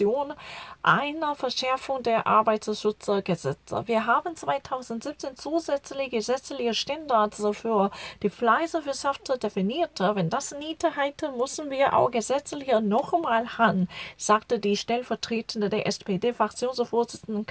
eine Verschärfung der Arbeitsschutzgesetze. Wir haben 2017 zusätzliche gesetzliche Standards für die Fleischwirtschaft definiert. Wenn das nicht reicht, müssen wir auch gesetzlich nochmal ran, sagte die stellvertretende der SPD-Fraktionsvorsitzende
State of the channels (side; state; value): both; identical; correlation 1.00